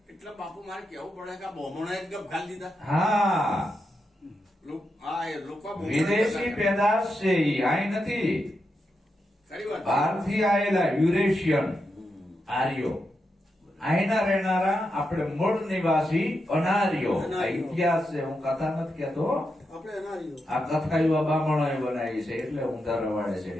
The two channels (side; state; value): both; normal; correlation 0.86